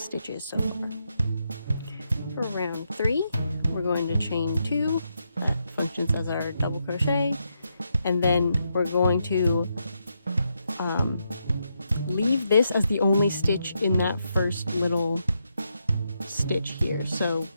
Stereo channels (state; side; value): inverted; both; correlation -0.81